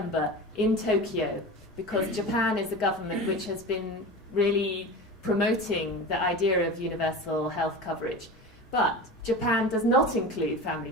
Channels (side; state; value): both; normal; correlation 0.30